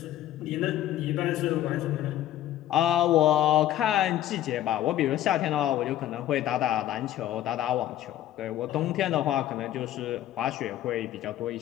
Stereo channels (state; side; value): quieter; right; 12.7 dB